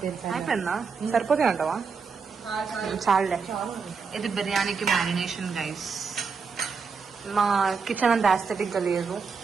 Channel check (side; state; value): left; quieter; 5.3 dB